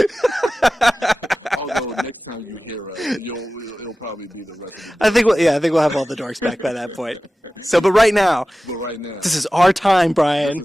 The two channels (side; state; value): both; normal; correlation 0.96